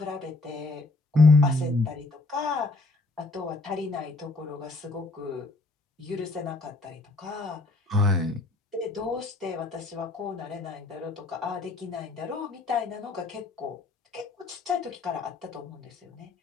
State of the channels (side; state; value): right; quieter; 3.3 dB